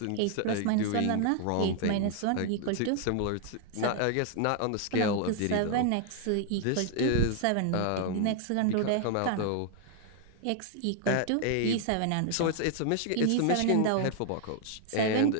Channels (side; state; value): both; different; correlation 0.00